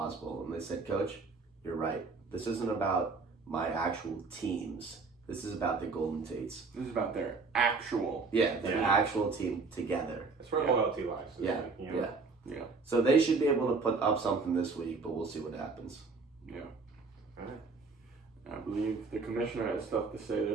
And they said, Coach, you're right. This isn't about my actual teams. This is about the Golden Tates. This is about their actual. Yeah, their actual team together. That's where loyalty lies. Yeah, you know? Yeah. So they should be able to put up something this week, but we'll see what happens. Yeah. All right. I believe the commissioner has stuff to say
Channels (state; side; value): quieter; left; 4.3 dB